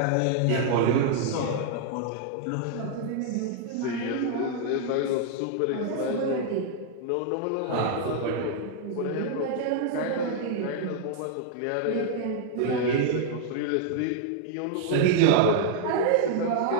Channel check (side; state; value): both; different; correlation 0.00